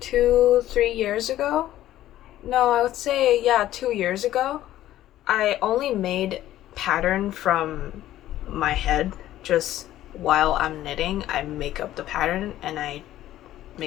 years ago, no, I would say, yeah, 2 years ago, I only made pattern from my head. Just while I'm knitting, I make up the pattern and I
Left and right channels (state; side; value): quieter; right; 13.7 dB